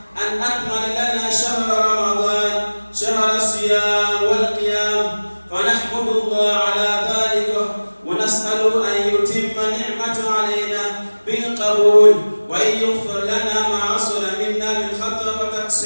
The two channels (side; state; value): both; inverted; correlation -1.00